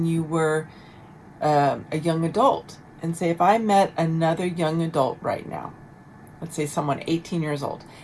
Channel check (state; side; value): identical; both; correlation 1.00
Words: you were a young adult. And say, if I met another young adult right now, let's say someone 18 years old,